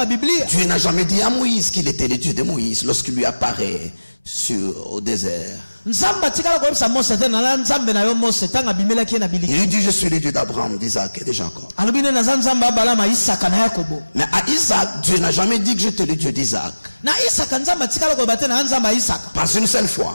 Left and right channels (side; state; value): both; inverted; correlation -1.00